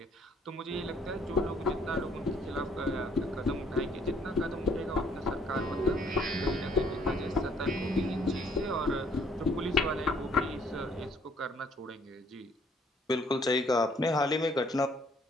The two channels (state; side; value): normal; both; correlation 0.63